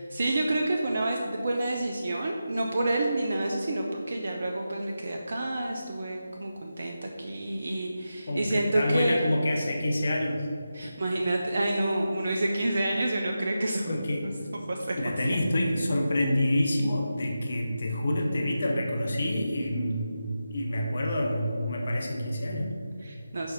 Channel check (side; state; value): both; inverted; correlation -0.90